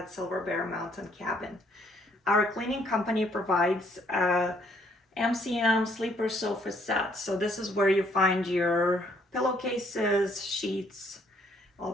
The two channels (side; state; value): both; normal; correlation 0.66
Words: Silber Mountain Cabin. Our cleaning company provides a MCM sleeper sofa set. So this is where you find your pillowcases, sheets, all